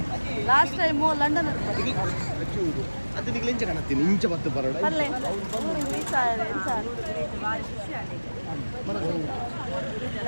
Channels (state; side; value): inverted; both; correlation -1.00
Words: ಲಾಸ್ಟ್ ಟೈಮು ಲಂಡನ್ ಅದು ನಿಮಗೆ ಇಂಚ ಕಾಣತ್ತೀನಿ ಇಂಚ ಬತ್ತು ಬರೋಣ ಅಲ್ಲೇ ಊರಿಗೆ ರೀಚ್ ಆಗಿದೆ.